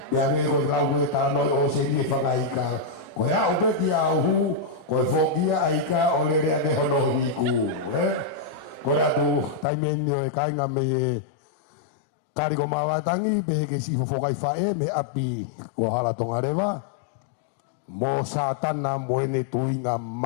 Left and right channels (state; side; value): drops out; right; at 9.7 s